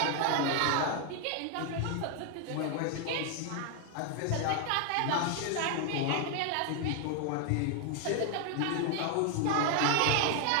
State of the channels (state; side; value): different; both; correlation 0.00